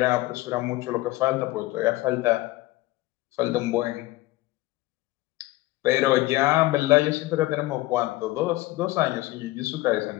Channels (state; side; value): quieter; right; 18.8 dB